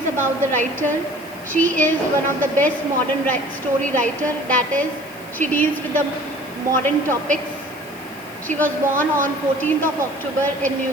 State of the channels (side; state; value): right; noise; hiss, 22 dB below the sound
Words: about the writer. She is one of the best modern story writer, that is, she deals with the modern topics. She was born on 14th of October in